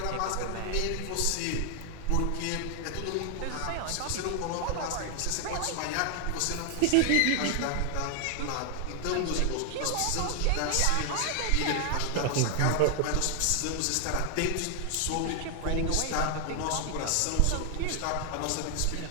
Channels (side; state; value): both; different; correlation 0.00